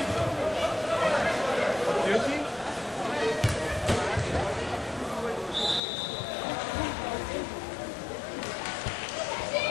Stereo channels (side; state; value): right; drops out; at 5.8 s